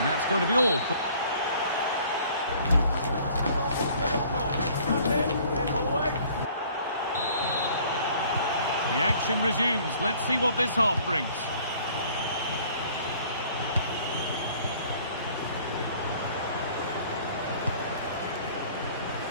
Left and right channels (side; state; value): both; inverted; correlation -0.55